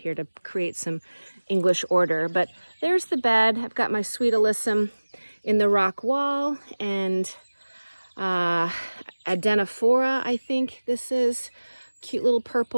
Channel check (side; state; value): both; inverted; correlation -1.00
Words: here to create some English order. But there's the bed. I've got my sweet alyssum in the rock wall, and Adenophora, I think this is. Cute little